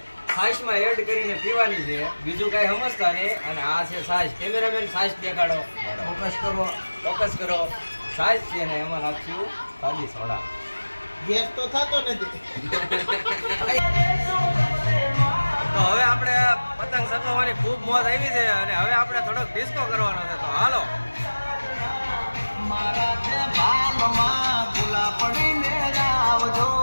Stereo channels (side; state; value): both; inverted; correlation -1.00